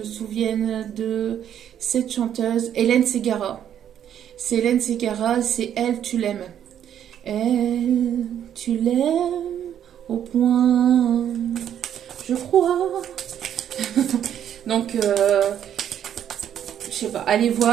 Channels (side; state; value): left; quieter; 9.8 dB